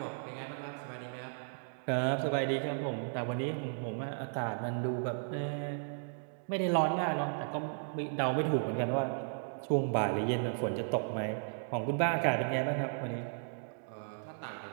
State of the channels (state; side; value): silent; left; digital silence